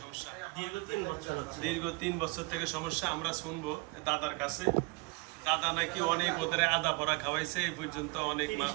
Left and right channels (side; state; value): left; quieter; 27.4 dB